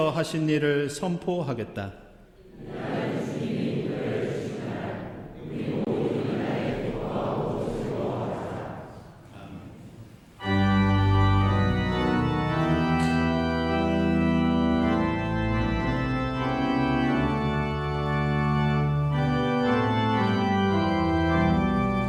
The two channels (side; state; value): both; identical; correlation 1.00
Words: 하신 일을 선포하겠다.